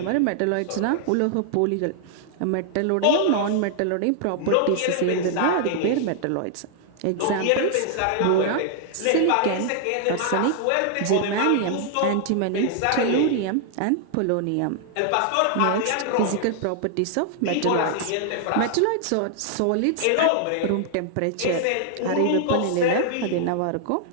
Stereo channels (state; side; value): different; both; correlation 0.00